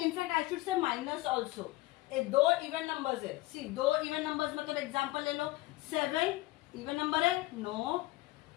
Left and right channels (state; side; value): quieter; right; 19.1 dB